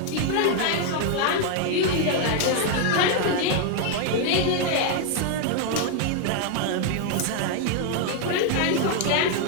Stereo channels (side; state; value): both; different; correlation 0.00